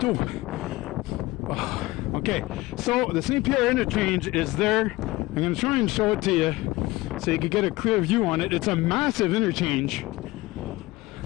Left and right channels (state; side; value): quieter; right; 19.7 dB